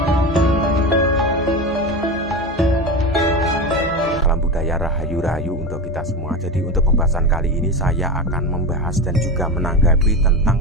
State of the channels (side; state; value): both; normal; correlation 0.22